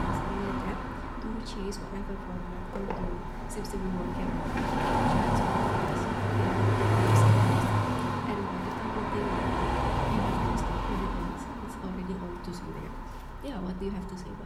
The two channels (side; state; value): both; identical; correlation 1.00